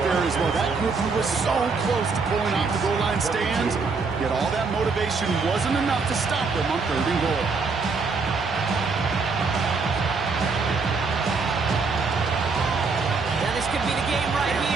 there as well. That group who was so close to pulling off the goal line stands, yet all that motivation wasn't enough to stop them on 3rd and goal. Now this could be the game right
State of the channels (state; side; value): quieter; left; 4.5 dB